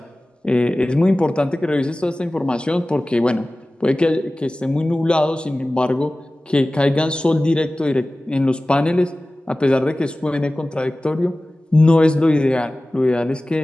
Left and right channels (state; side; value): normal; both; correlation 0.97